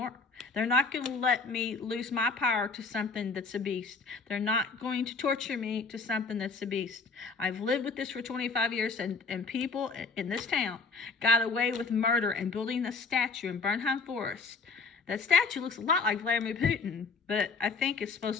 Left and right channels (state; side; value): quieter; right; 4.4 dB